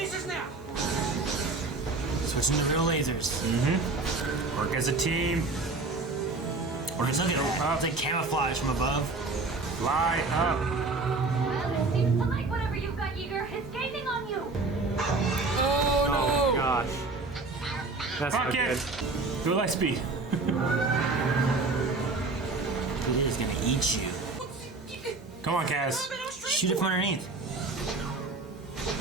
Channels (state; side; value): quieter; left; 3.6 dB